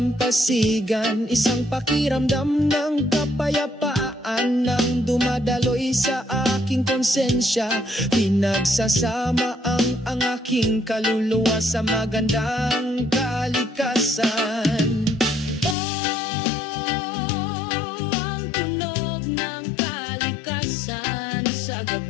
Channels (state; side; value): drops out; right; at 15.8 s